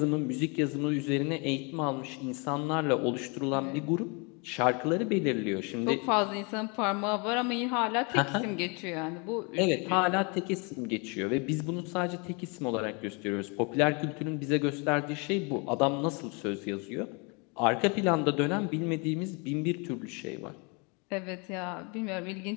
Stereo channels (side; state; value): right; quieter; 32.0 dB